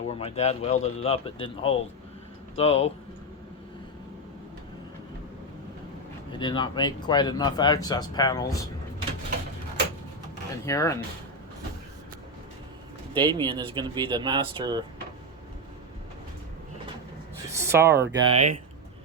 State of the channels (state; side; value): normal; both; correlation 0.07